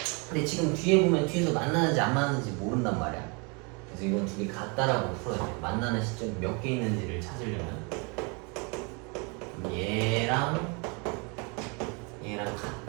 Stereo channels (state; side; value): quieter; left; 32.1 dB